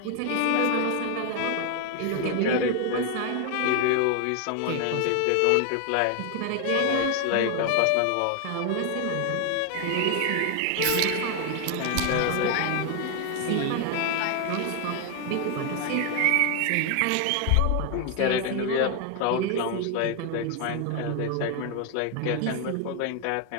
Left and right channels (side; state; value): both; different; correlation 0.01